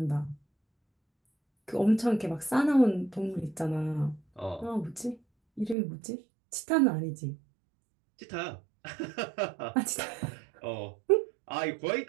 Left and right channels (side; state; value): left; drops out; at 5.8 s